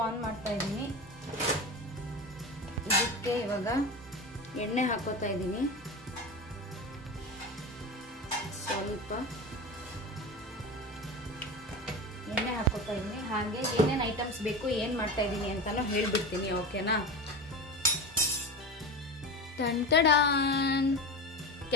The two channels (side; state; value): both; normal; correlation 0.26